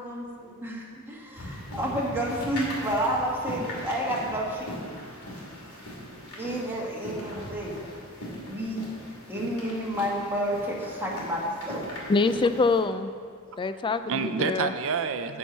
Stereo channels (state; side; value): normal; both; correlation 0.36